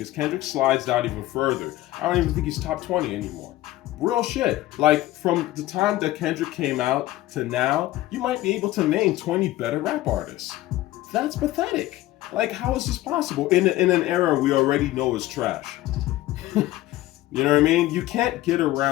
Kendrick slides down even further. I don't even think he's top 20 anymore. Real shit. Like, from the time that Kendrick came out to now, you might be able to name 20 better rap artists. That's pathetic. Like, how is this possible? In an era we already know is trash. You know what I mean? You can't get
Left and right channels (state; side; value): quieter; right; 16.2 dB